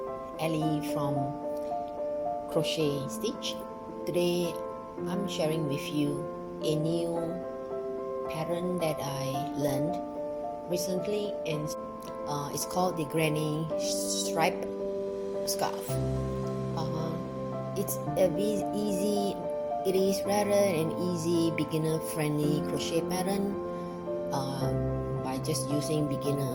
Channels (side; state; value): both; identical; correlation 1.00